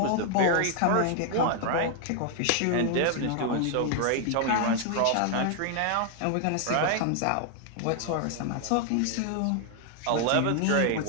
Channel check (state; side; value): different; both; correlation 0.00